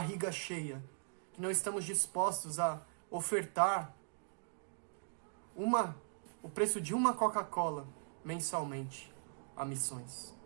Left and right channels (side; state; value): left; silent; digital silence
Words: cheia, que não estamos dispostos a ofertar o preço de uma Coca-Cola mensalmente a missões.